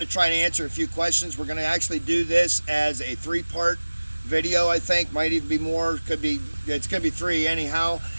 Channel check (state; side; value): inverted; both; correlation -1.00